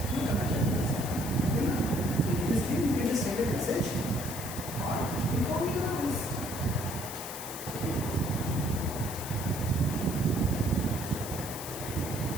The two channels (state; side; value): noise; left; hiss, 9 dB below the sound